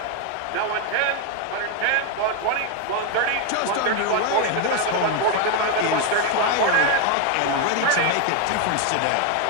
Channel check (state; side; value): different; both; correlation 0.01